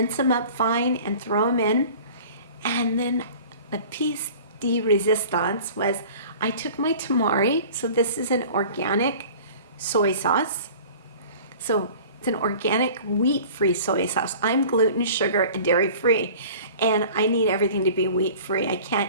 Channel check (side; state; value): both; inverted; correlation -0.44